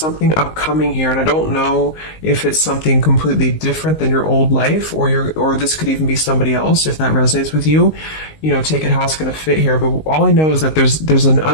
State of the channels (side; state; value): right; late; 19 ms